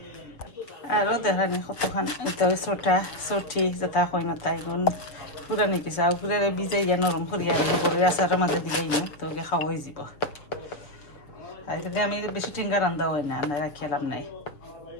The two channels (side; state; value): right; late; 6.8 ms